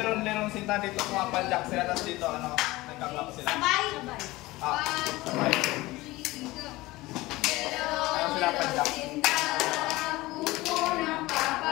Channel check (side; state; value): right; quieter; 19.6 dB